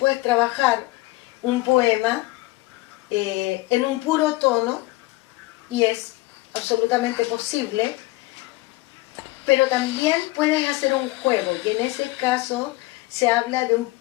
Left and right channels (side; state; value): right; quieter; 20.2 dB